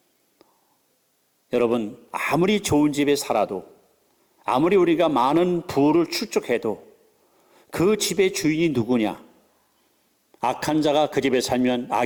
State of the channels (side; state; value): both; identical; correlation 1.00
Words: 여러분, 아무리 좋은 집에 살아도, 아무리 우리가 많은 부를 축적해도 그 집의 주인이 누구냐? 악한 자가 그 집에 살면